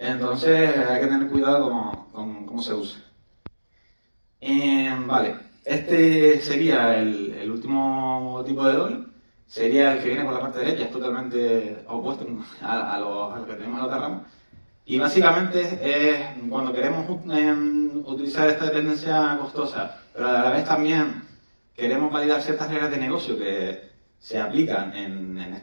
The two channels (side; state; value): both; inverted; correlation -1.00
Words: hay que tener cuidado con cómo se usa. Vale, este sería el último tipo de doble. Sería el que viene por la parte derecha, es totalmente opuesto a lo que tenemos en la otra rama. Y básicamente es cuando queremos utilizar esta dependencia costosa, pero a la vez también queremos validar ciertas reglas de negocio que se aplican en